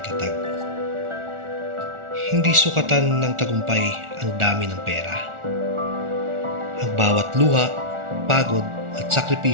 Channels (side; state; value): left; late; 1.4 ms